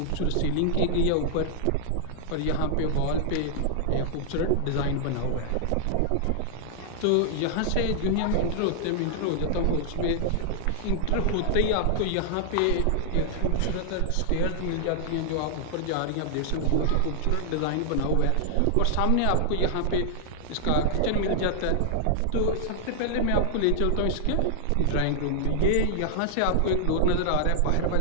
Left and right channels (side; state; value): both; different; correlation -0.01